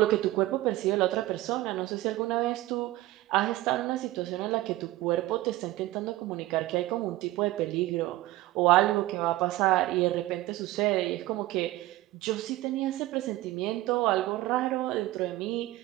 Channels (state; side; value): quieter; left; 17.1 dB